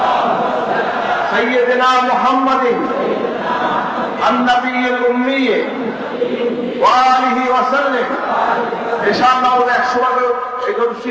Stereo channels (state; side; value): identical; both; correlation 1.00